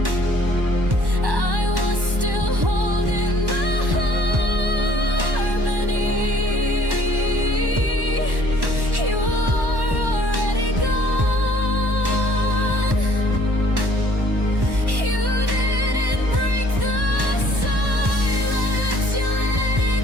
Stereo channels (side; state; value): left; late; 1.1 ms